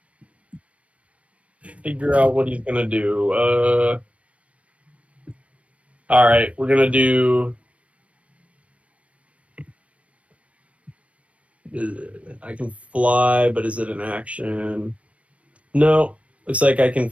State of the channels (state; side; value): late; left; 0.064 ms